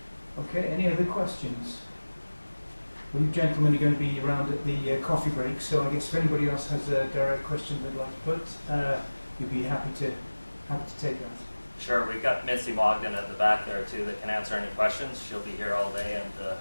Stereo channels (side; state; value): both; inverted; correlation -1.00